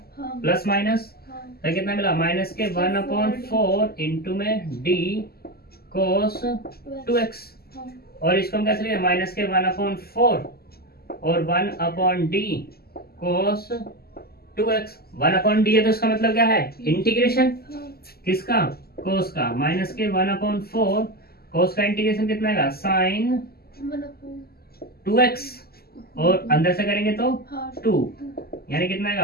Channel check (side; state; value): right; late; 0.45 ms